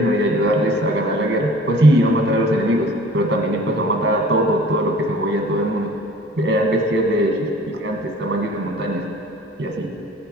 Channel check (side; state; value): both; normal; correlation 0.48